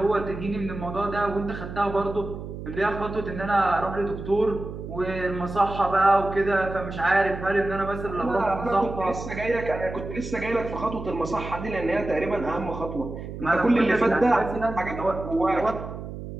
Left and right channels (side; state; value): right; noise; hum, 9 dB below the sound